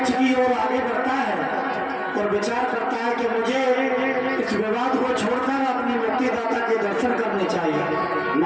की ओर आगे बढ़ता है और विचार करता है कि मुझे इस विवाद को छोड़कर अपनी मुक्तिदाता के दर्शन करने चाहिए।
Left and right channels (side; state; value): both; identical; correlation 1.00